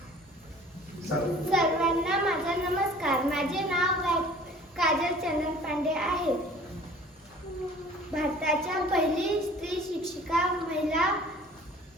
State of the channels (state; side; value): normal; both; correlation 0.49